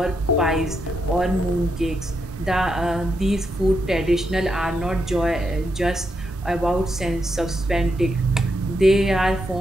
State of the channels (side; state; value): both; normal; correlation 0.82